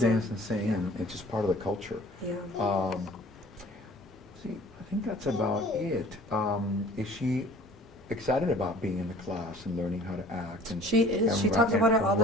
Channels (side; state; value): both; normal; correlation 0.49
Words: dance and sing, and it's just part of the culture. Yeah. See, I think that's about it. Is she excited about being in the class and learning how to act? And She is. She ri- talks about it all the